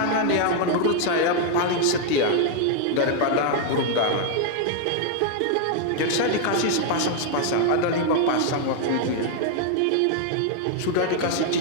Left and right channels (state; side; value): different; both; correlation 0.00